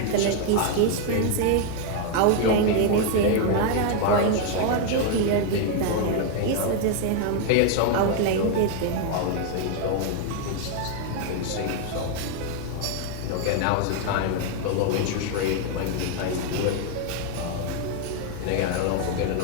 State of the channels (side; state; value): both; different; correlation 0.00